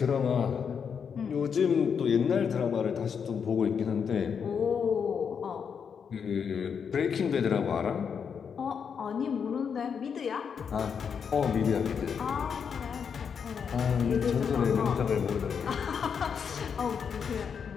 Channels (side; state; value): right; quieter; 6.8 dB